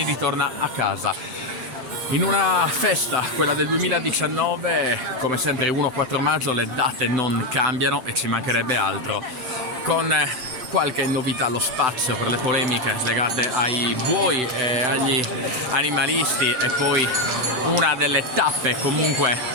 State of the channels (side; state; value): left; late; 7.9 ms